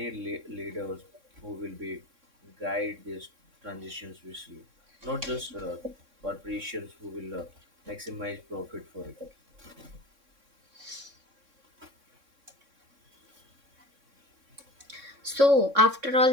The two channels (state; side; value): late; left; 3.6 ms